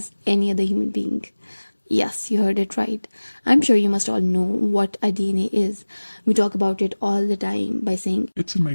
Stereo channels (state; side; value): inverted; both; correlation -1.00